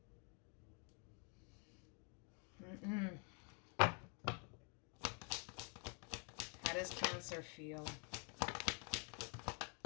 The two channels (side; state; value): right; quieter; 36.9 dB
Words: How does Cancer feel?